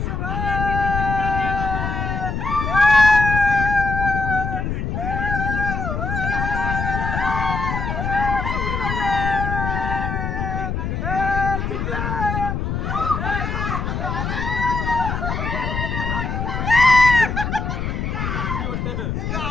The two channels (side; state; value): left; noise; rumble, 2 dB below the sound